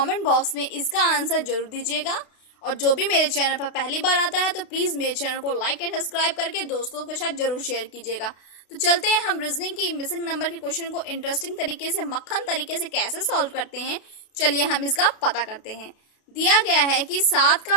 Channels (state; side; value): late; right; 32 ms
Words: बॉक्स में इसका आंसर जरूर दीजिएगा। और जो भी मेरे चैनल पर पहली बार आता है तो प्लीज मेरे चैनल को लाइक एंड सब्सक्राइब करके दोस्तों के साथ जरूर शेयर कीजिएगा। तो चलते हैं हम रीजनिंग की मिसिंग नंबर के क्वेश्चन को इंटरेस्टिंग तरीके से, मक्खन तरीके से कैसे सॉल्व करते हैं। चलिए हम इसका पता करते हैं। दिया गया है कि 7